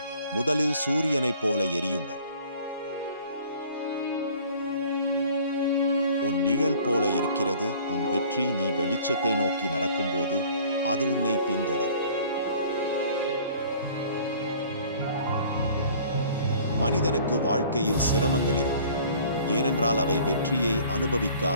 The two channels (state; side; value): inverted; both; correlation -0.51